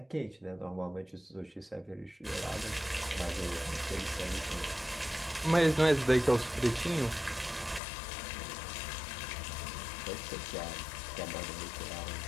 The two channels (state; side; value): drops out; right; at 7.8 s